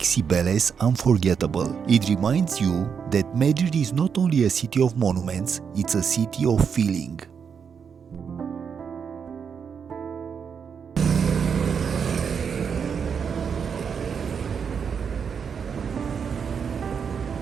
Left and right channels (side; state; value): left; quieter; 6.7 dB